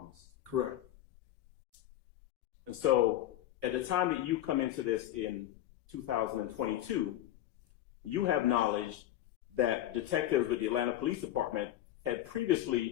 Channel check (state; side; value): quieter; right; 13.1 dB